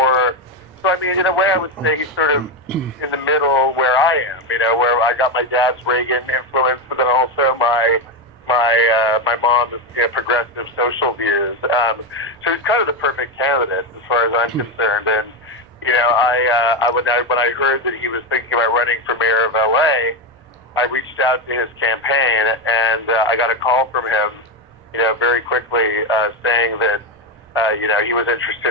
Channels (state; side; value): noise; right; rumble, 29 dB below the sound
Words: So I mean, in a way, I would say he's sort of in the middle where I am. Where I got my dad's Reagan influence, but then also my mom's progressive social views. So he's kind of the perfect candidate as far as I'm concerned. And when I heard that he was thinking about running for mayor of LA, I reached out to his campaign, and I got a call from him, very quickly, saying that, he was